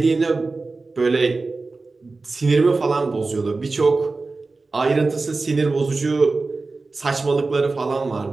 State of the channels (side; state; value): left; quieter; 3.7 dB